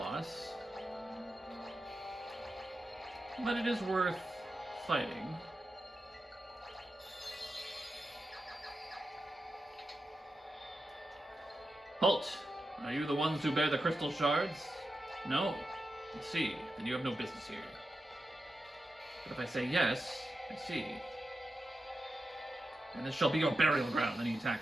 but it is worth fighting. Halt! Are you the ones who bear the crystal shards? No. I see. Then you have no business here. But if I say yes, I see. And this shall be your burial ground. Then he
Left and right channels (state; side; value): normal; both; correlation 0.89